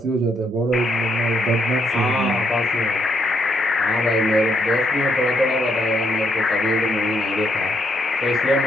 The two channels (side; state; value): both; normal; correlation 0.75